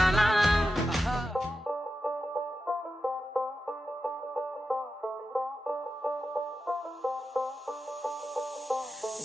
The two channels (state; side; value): normal; both; correlation 0.90